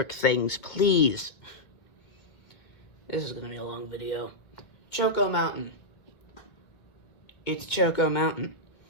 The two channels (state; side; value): late; right; 2.1 ms